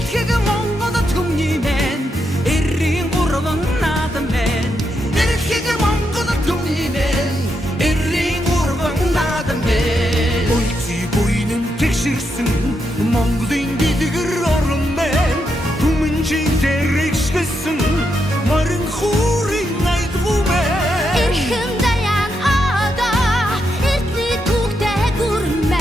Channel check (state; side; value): normal; both; correlation 0.82